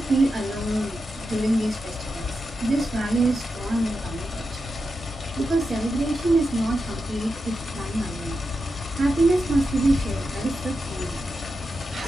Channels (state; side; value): normal; both; correlation 0.88